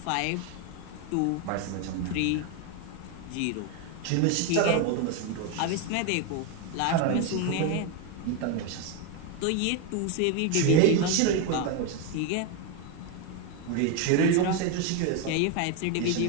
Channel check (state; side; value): different; both; correlation 0.02